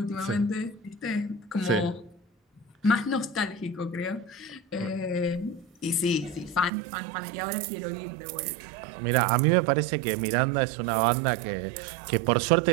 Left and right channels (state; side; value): drops out; left; at 6.7 s